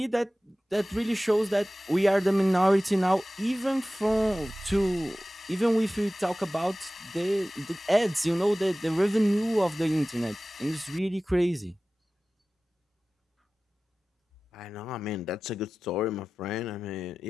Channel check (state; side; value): normal; both; correlation 0.96